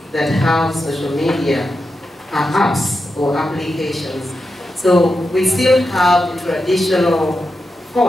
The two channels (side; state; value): both; normal; correlation 0.88